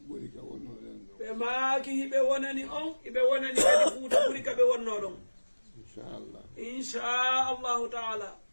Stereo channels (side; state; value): both; inverted; correlation -1.00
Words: ɓuri ka wonnoɗen ɗo ɓe maaki hiɓe wonani on hiɓe wonani kadi fuuta ɓuri ka ɓe wonno ɗon inchallah inchallahu taala